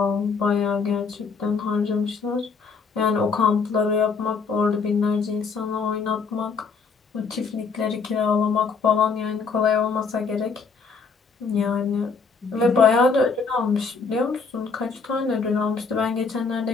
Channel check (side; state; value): right; quieter; 5.1 dB